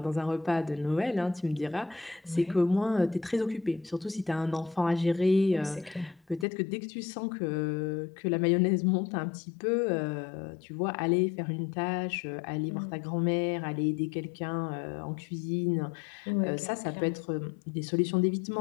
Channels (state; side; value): drops out; right; at 6.5 s